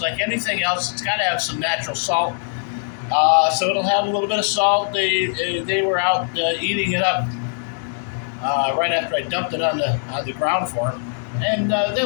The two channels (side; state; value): right; silent; digital silence